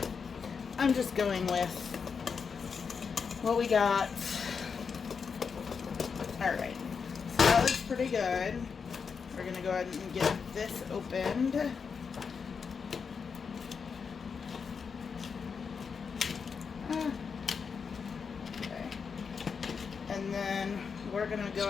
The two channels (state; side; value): quieter; right; 5.8 dB